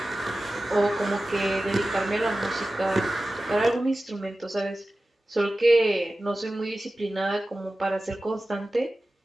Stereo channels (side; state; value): both; normal; correlation 0.95